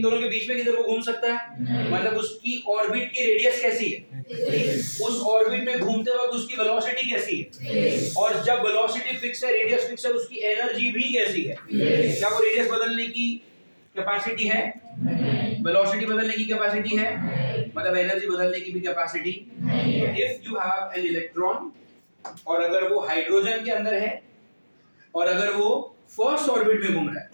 दोनों के बीच में किधर को घूम सकता है? मतलब उसकी ऑर्बिट की रेडियस कैसी है? उस ऑर्बिट में घूमते वक्त उसकी वेलोसिटी कैसी है? और जब वेलोसिटी फिक्स है, रेडियस फिक्स है, उसकी एनर्जी भी कैसी है? क्या वो रेडियस बदलने की कैपेसिटी है? वेलोसिटी बदलने की कैपेसिटी है? मतलब एनर्जी बदलने की भी capacity. If you have an electron और अगर वो हाइड्रोजन के अंदर है और अगर वो फर्स्ट ऑर्बिट में घूम रहा है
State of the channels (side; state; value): both; inverted; correlation -1.00